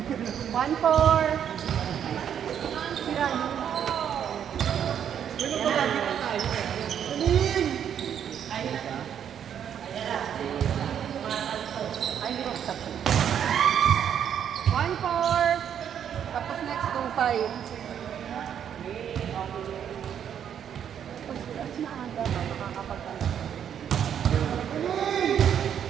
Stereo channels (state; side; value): quieter; left; 8.9 dB